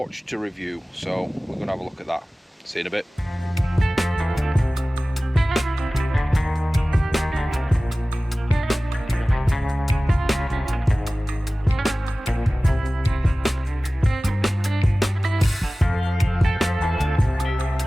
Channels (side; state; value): both; normal; correlation 0.97